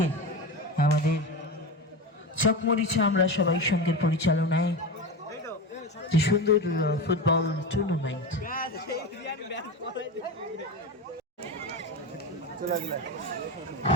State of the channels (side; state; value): both; normal; correlation 0.23